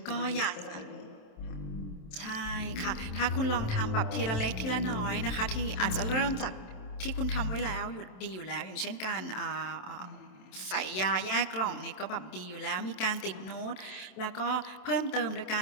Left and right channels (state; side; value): late; right; 27 ms